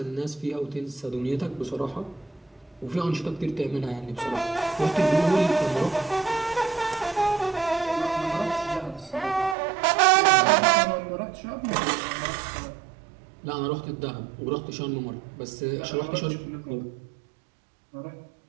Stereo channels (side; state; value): left; drops out; at 9.6 s